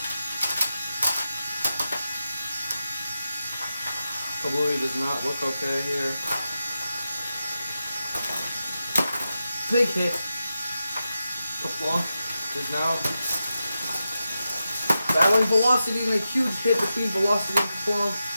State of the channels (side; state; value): both; inverted; correlation -0.90